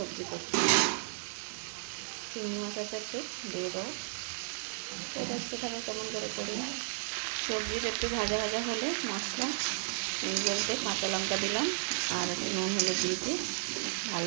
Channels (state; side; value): silent; left; digital silence